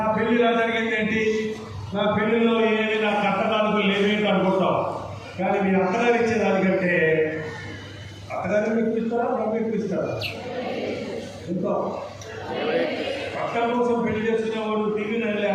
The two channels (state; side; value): identical; both; correlation 1.00